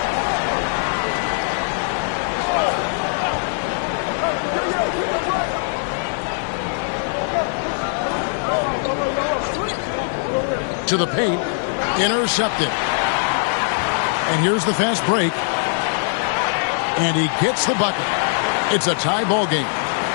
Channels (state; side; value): silent; right; 62 dB below the other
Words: To the paint, intercepted. And here's the fast break. And he gets the bucket. It's a tie ball game.